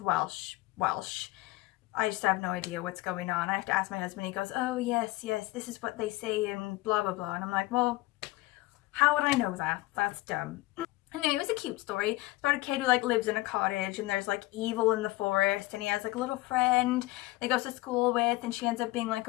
I just have no idea what's going on. I have to ask my husband. He goes, oh yes, this is what they say and blah blah blah, and I'm like, well, how would I know that? That's dumb. Anyway, it was a cute story. It's about a kid who like lives in a cottage and there's like evil in the forest, and he has like a little friend that he goes to school with, and she ends up being like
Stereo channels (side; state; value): right; quieter; 19.6 dB